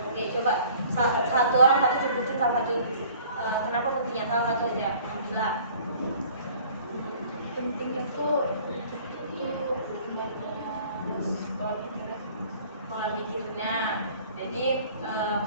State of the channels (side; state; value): both; inverted; correlation -0.51